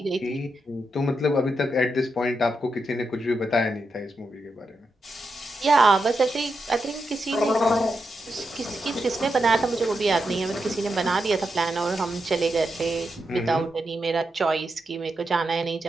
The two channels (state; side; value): normal; both; correlation 0.85